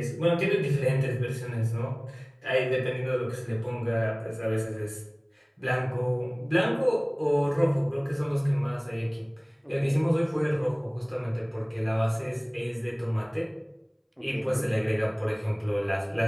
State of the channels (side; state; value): both; identical; correlation 1.00